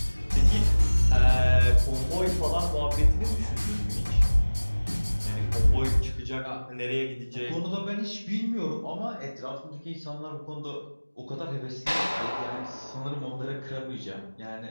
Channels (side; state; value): both; inverted; correlation -1.00